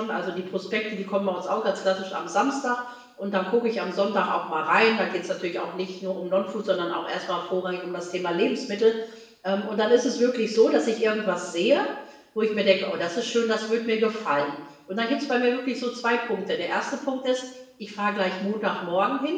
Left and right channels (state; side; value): identical; both; correlation 1.00